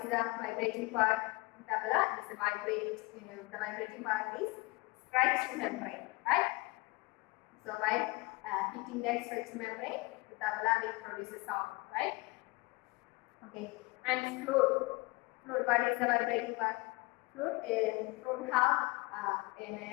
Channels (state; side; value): quieter; right; 24.1 dB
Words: the vibrating part? Tabla is the vibrating part is stretched membrane, right? So by hitting that stretched membrane, the tabla will produce a sound, right? Okay. And flute. Flute, what is the vibrating part? Flute have an